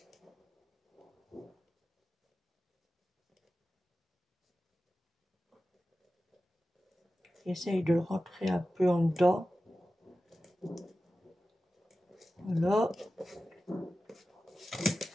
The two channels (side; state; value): both; normal; correlation 0.94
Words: J'essaye de le rentrer un peu en dedans. Voilà.